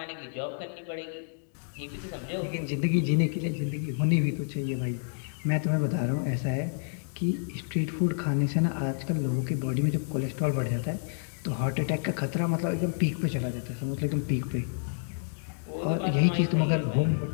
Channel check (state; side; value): silent; right; digital silence